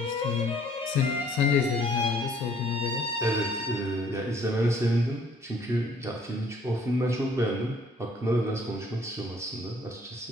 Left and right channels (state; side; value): normal; both; correlation 0.59